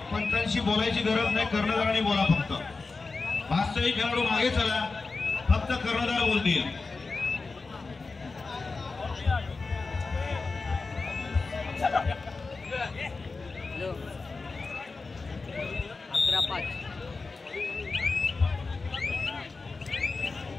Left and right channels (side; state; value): right; quieter; 4.0 dB